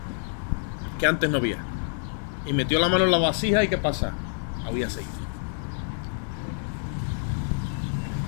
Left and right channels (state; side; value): silent; right; 60 dB below the other